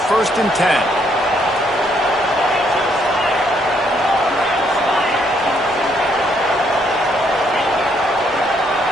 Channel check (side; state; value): both; normal; correlation 0.71